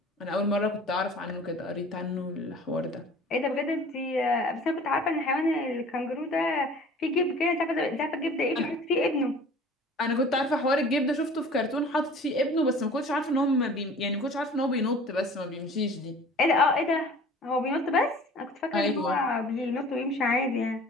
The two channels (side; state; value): both; normal; correlation 0.45